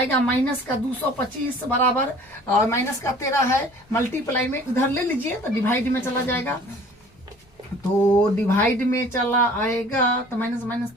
माइनस का 225 बराबर माइनस का 13 है, मल्टीप्लाई में उधर ले लीजिए तो डिवाइड में चला जाएगा, तो डिवाइड में चला आएगा तो माइनस माइनस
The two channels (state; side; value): normal; both; correlation 0.50